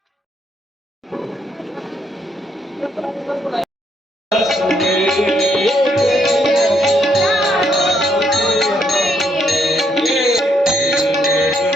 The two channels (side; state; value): both; normal; correlation 0.74